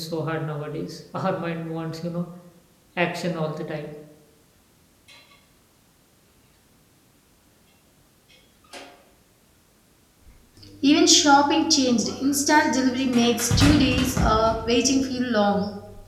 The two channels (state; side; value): identical; both; correlation 1.00